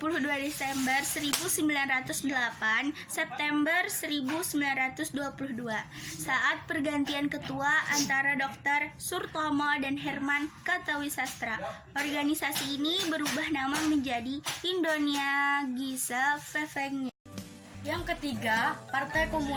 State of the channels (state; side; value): identical; both; correlation 1.00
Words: Desember 1908 September 1922 saat pergantian ketua antara Dr. Surtomo dan Herman Kartawisastra. Organisasi ini berubah nama menjadi Indonesia Gesellschaft. Yang ketiga, Partai